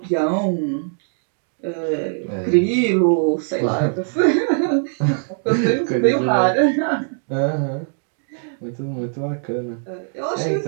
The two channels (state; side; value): silent; left; digital silence